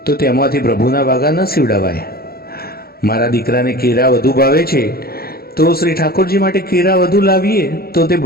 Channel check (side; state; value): right; late; 0.44 ms